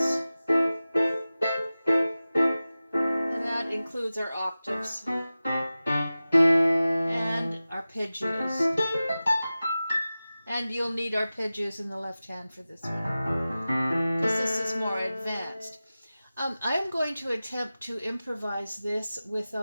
And that includes our octaves and arpeggios. And you'll need arpeggios in the left hand for this one, because this is more advanced. I'm going to attempt to improvise this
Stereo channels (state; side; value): inverted; both; correlation -0.96